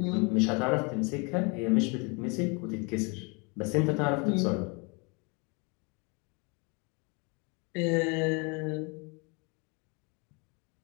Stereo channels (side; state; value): right; quieter; 31.4 dB